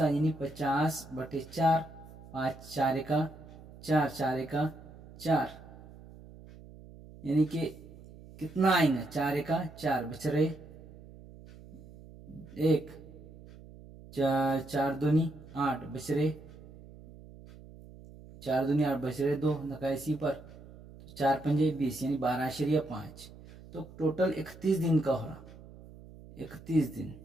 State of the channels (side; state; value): right; noise; hum, 18 dB below the sound